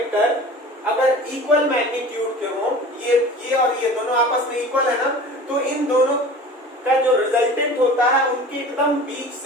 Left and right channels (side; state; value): both; normal; correlation 0.40